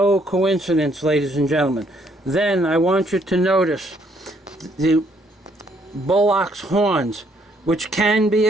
coincidence, ladies and gentlemen. Then I want you to notice the bullock's horns, which can be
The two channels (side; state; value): both; normal; correlation 0.68